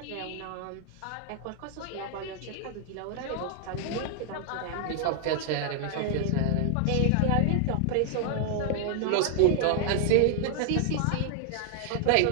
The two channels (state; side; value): different; both; correlation 0.00